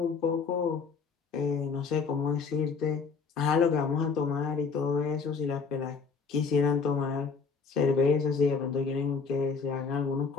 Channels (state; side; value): quieter; right; 5.2 dB